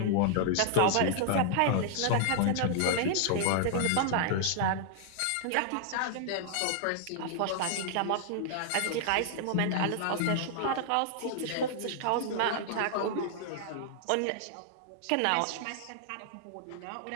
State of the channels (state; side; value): different; both; correlation -0.01